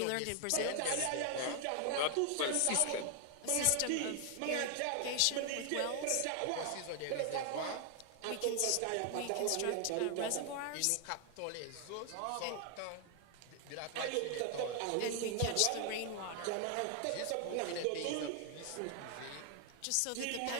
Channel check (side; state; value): both; different; correlation 0.00